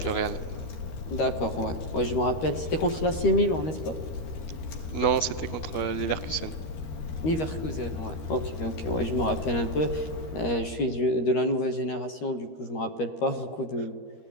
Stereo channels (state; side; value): late; right; 13 ms